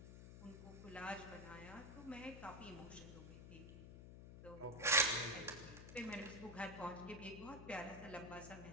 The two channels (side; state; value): left; noise; hum, 12 dB below the sound